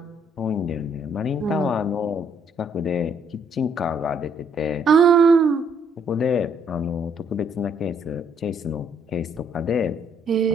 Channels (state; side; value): normal; both; correlation 0.68